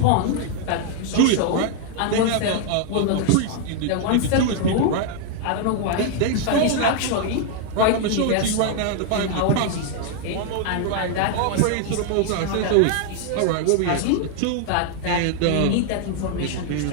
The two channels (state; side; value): different; both; correlation 0.00